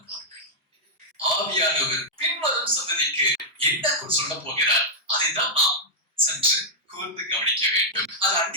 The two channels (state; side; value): normal; both; correlation -0.06